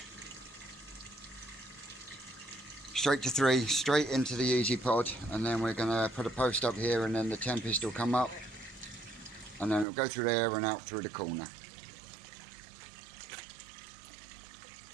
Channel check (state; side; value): drops out; left; at 9.9 s